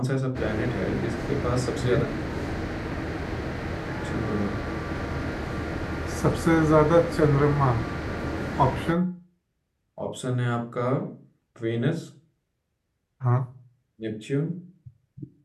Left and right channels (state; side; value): identical; both; correlation 1.00